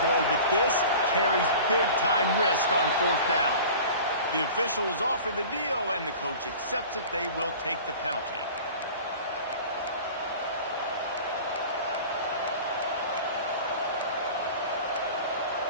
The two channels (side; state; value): both; inverted; correlation -0.40